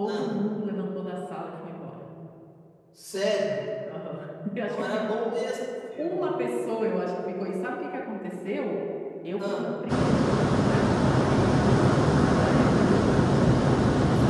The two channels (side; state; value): both; identical; correlation 1.00